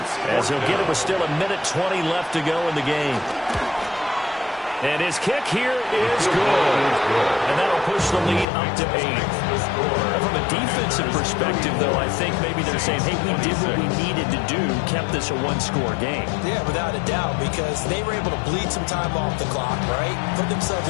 as he'll get it with still 1:20 left to go in the game. And his kick here is good. And that'll push the lead up to 8. From a defensive perspective, though, I think maybe they're saying, hey, we did what we needed to do, kept this a one-score game. Yeah, without a doubt, because they were able to bleed some time off the clock, right? Put themselves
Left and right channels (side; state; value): right; drops out; at 8.5 s